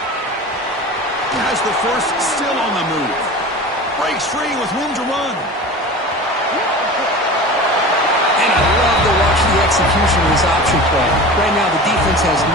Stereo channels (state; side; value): normal; both; correlation 0.34